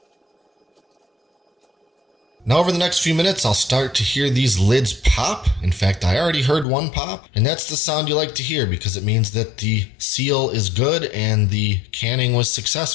Now over the next few minutes, I'll start to hear these lids pop. In fact, I already heard one pop, and that's the sound you like to hear because it means that the seal is good and the canning was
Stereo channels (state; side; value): drops out; right; at 6.7 s